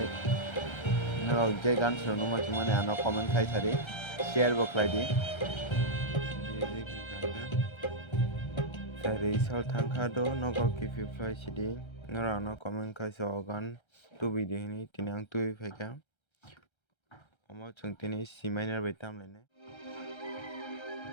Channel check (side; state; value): right; late; 1.3 ms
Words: norok je gan suno macam mana ano comment khai sari, share bo khaidi. Music kangka. Sari sol thangka do nogor kipi fly sidi. Norok ano comment khai so gan tu video ini tinang tu feka. Omo chung tini C minor bai tamlainai.